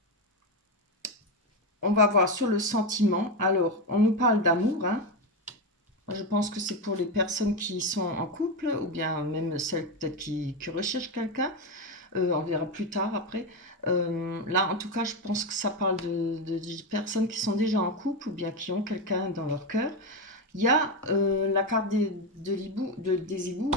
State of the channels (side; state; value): both; normal; correlation 0.12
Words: On va voir sur le sentiment. Alors, on nous parle d'amour. Hein. Je pense que c'est pour les personnes qui sont en couple ou bien même celles peut-être qui recherchent quelqu'un. On verra plus tard après. Là, en tout cas, je pense que ça parle de personnes qui sont déjà en couple ou bien qui ont quelqu'un dans leur cœur. Il y a la carte des hiboux